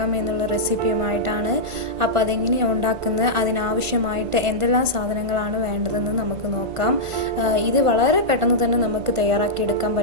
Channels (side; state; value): left; late; 1.5 ms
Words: എന്നുള്ള റെസിപ്പിയുമായിട്ടാണ്. അപ്പോൾ അതെങ്ങനെയാണ് ഉണ്ടാക്കുന്നത്, അതിനാവശ്യമായിട്ട് എന്തെല്ലാം സാധനങ്ങളാണ് വേണ്ടതെന്ന് നമുക്ക് നോക്കാം. ഇത് വളരെ പെട്ടെന്ന് തന്നെ നമുക്ക് തയ്യാറാക്കിയെടുക്കാൻ